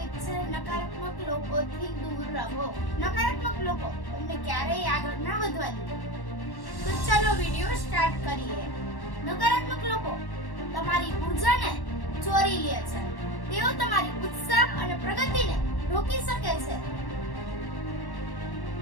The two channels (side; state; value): right; late; 1.1 ms